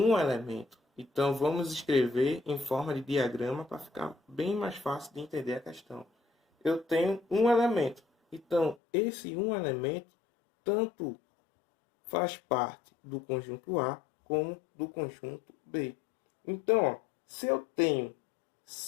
elemento. Então, vamos escrever em forma de diagrama para ficar bem mais fácil de entender a questão. Eu tenho um elemento. Então, esse um elemento tanto faz parte do conjunto A como do conjunto B. Então, ó, se eu tenho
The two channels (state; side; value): drops out; right; at 8.8 s